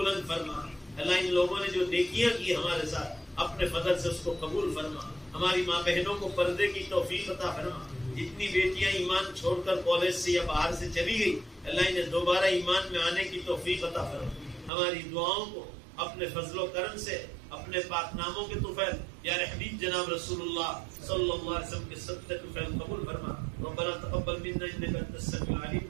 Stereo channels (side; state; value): left; drops out; at 14.7 s